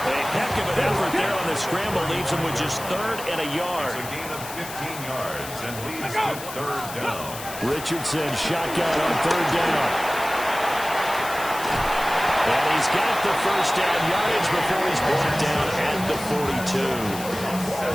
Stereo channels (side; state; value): left; noise; hiss, 11 dB below the sound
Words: A heck of an effort there on the scramble leaves him with just 3rd and a yard. It's a gain of 15 yards and leads to 3rd down. Richardson shotgun on 3rd down. And he's got the first down yardage before he's brought down at the